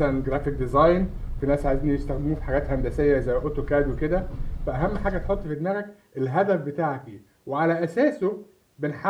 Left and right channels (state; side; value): identical; both; correlation 1.00